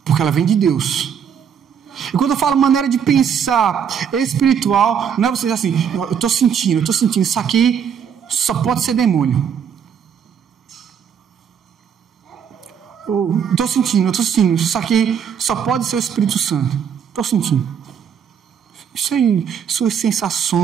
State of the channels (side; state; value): left; quieter; 7.8 dB